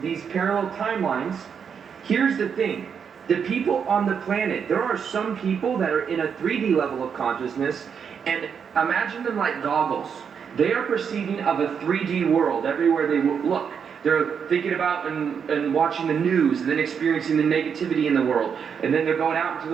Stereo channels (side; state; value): left; quieter; 7.0 dB